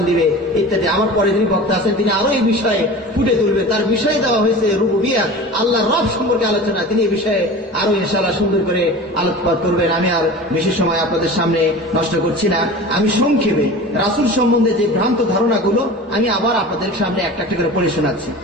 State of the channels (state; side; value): normal; both; correlation 0.36